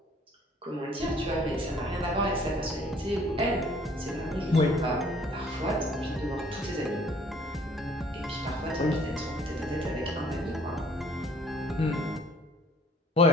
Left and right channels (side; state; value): both; normal; correlation 0.57